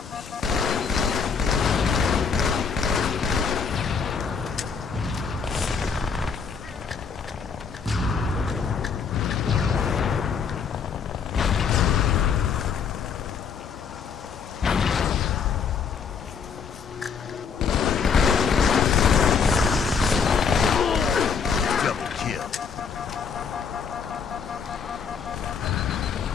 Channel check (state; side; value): quieter; right; 6.2 dB